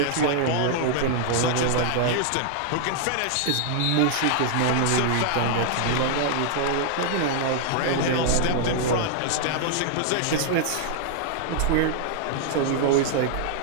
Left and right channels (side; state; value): both; different; correlation -0.01